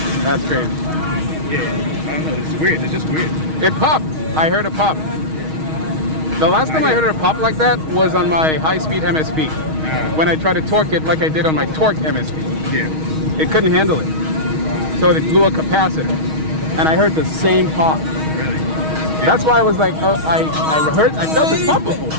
that's crazy. Yeah, I don't know, it's weird, it's just weird. It popped. I heard it pop. The last time I heard it pop like that was on my high-speed MSP. When I tried to torque it like I did on my torque MSP. Yeah. It couldn't handle it. So it blew a capacitor. And I heard the same pop. Really? Yeah. That's why I was like, oh, I felt this pop before.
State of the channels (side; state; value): left; late; 6.3 ms